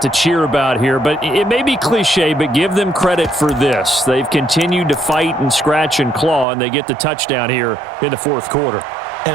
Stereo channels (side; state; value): left; drops out; at 6.5 s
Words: to cheer about here. But it may be cliche, but give them credit for this. They've continued to fight and scratch and claw, and they get the touchdown here in the fourth quarter.